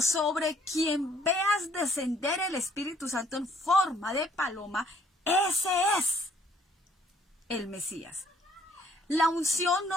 quien veas descender el Espíritu Santo en forma de paloma, ese es el Mesías. La unción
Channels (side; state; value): both; normal; correlation 0.62